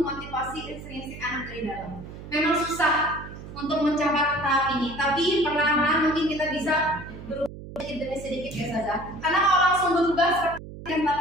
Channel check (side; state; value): right; noise; hum, 13 dB below the sound